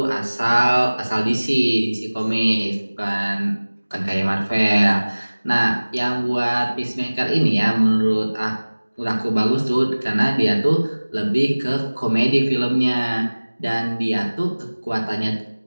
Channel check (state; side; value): inverted; both; correlation -1.00